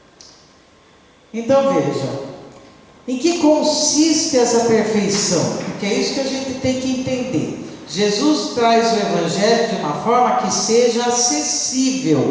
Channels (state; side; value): identical; both; correlation 1.00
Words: Então veja, em que consiste essa perfeição? Porque é isso que a gente tem que entender. Jesus traz o Evangelho de uma forma que seja